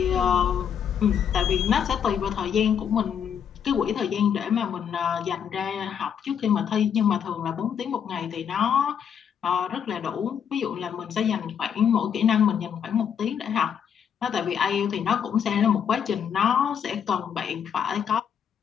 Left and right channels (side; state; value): right; quieter; 8.1 dB